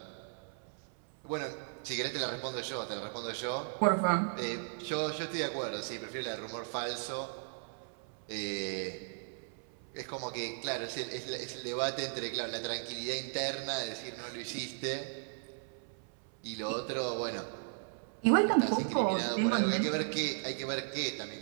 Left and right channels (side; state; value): left; silent; 54 dB below the other